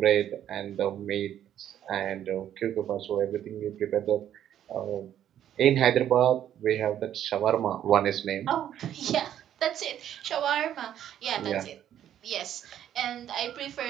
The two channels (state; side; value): quieter; left; 10.7 dB